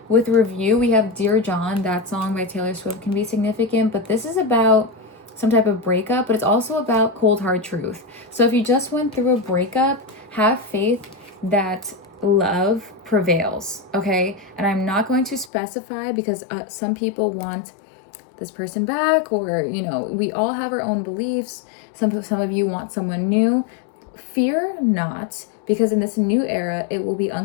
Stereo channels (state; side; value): drops out; right; at 15.5 s